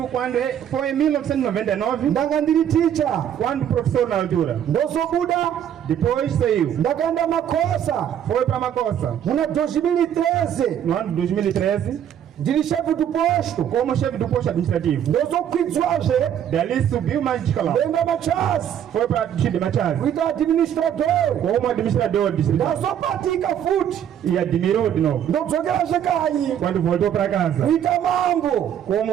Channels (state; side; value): quieter; left; 9.7 dB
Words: quando foi em 1999, Ndanga ndiri teacher. quando professor na altura. Ndozobuda. Depois saiu. Ndakaenda Makosa. Foi para Makosa. Muna 2013. No ano de 2013, Ndiri chefe do posto. como chefe do posto administrativo. Ndozokwidzwaje. Dali subiu mais de escalão. Ndenda Machas. Foi para o distrito de Machaz. Kuita administrador. Como administrador do distrito. Ndazopatika futi. E admirou de novo. Ndodzokeraje kanyi. Quando voltou para casa. Kuita mambo.